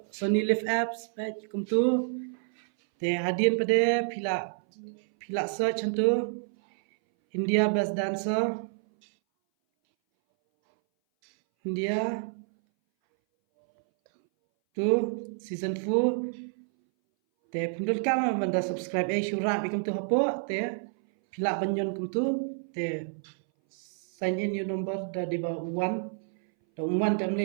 Sony Live apps baik kum tu hadian pada pila search tu India Best Dancer India tu season 4 pindul kam banda subscribe syura bikum tu hapo pila banyon kum tu sign in your number da di ba 1 tam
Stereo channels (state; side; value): silent; left; 59 dB below the other